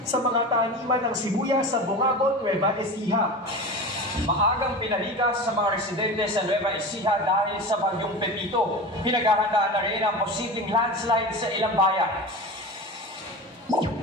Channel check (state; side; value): normal; both; correlation 0.29